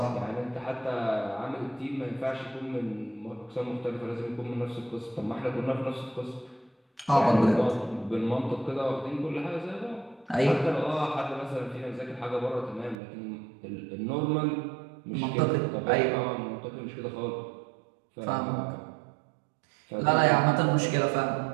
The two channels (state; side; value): drops out; left; at 13.0 s